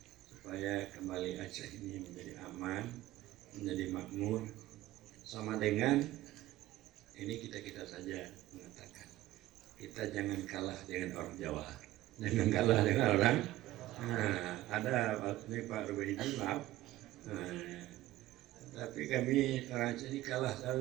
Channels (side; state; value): left; quieter; 16.0 dB